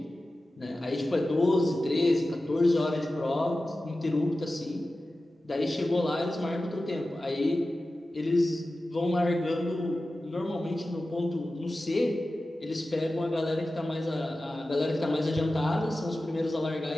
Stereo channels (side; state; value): both; normal; correlation 0.95